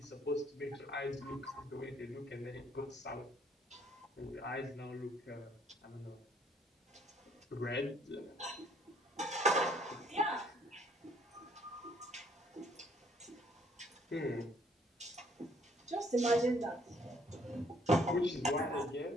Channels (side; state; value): both; normal; correlation 0.65